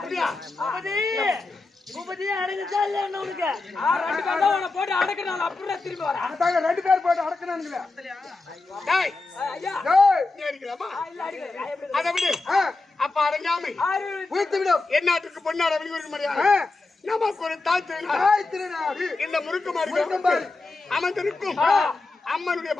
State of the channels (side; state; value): right; quieter; 3.5 dB